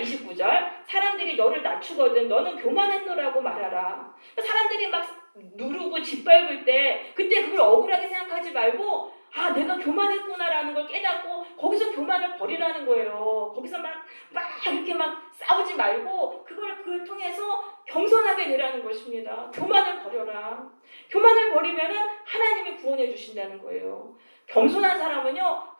사람들이 너를 낮추거든 너는 교만했노라고 말하라. 사람들이 막 누르고 짓밟을 때 그때 그걸 억울하게 생각하지 말고 아, 내가 교만했구나라는 걸 깨닫고 거기서 교만을 버리라는 거예요. 거기서 막 이렇게 막 싸우지 말고 그걸 통해서 겸손하게 되라는 것입니다. 교만을 버려라. 교만을 버리면은 하나님이 구원해 주신다는 거예요. 겸손한 사람은요,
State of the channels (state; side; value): inverted; both; correlation -1.00